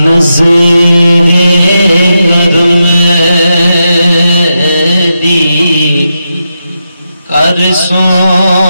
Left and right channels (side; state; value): both; inverted; correlation -0.87